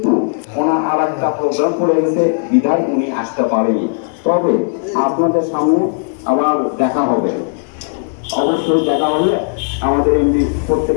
ওনার আর একটা প্রোগ্রাম পড়ে গেছে, বিধায় উনি আসতে পারেনি। তবে আপনাদের সামনে আবার দেখা হবে, অবশ্যই দেখা হলে আমাদের এমনি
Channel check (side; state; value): right; silent; 60 dB below the other